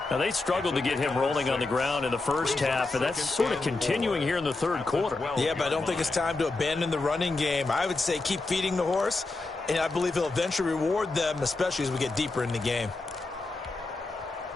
Now, they struggled to get him rolling on the ground in the first half, and that's sort of continuing here in the third quarter. Yeah, but I don't think it's time to abandon the running game. I would say keep feeding the horse, and I believe he'll eventually reward them, especially as we get deeper in the game.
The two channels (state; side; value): quieter; right; 3.4 dB